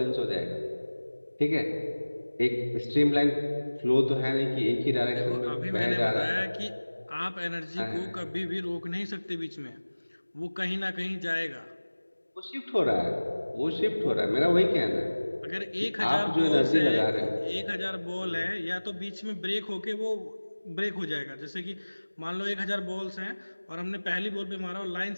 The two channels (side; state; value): both; inverted; correlation -1.00